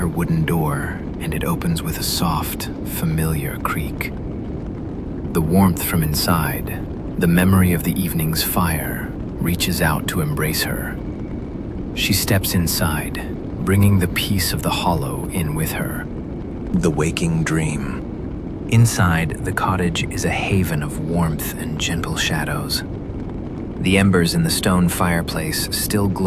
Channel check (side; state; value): both; identical; correlation 1.00